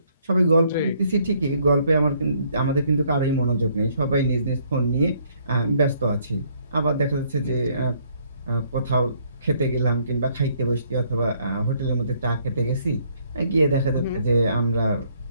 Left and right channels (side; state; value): both; inverted; correlation -0.66